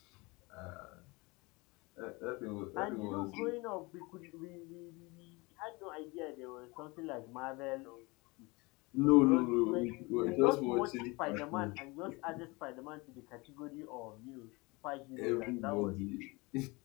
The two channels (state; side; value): quieter; right; 25.4 dB